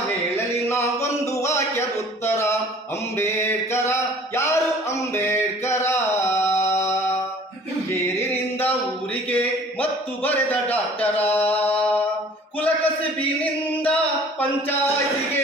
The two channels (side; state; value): both; normal; correlation 0.50